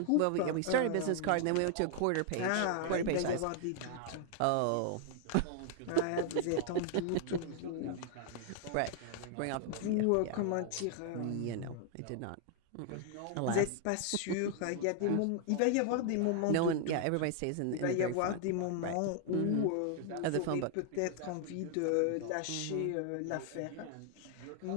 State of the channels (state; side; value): different; both; correlation 0.00